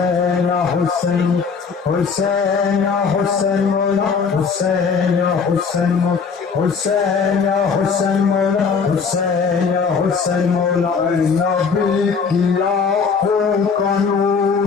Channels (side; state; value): right; quieter; 5.6 dB